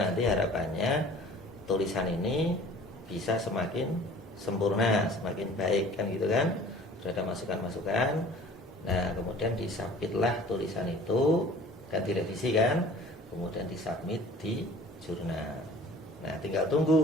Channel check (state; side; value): normal; both; correlation 0.48